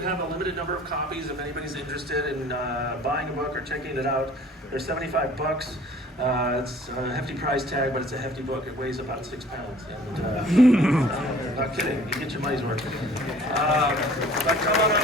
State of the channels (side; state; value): both; normal; correlation 0.51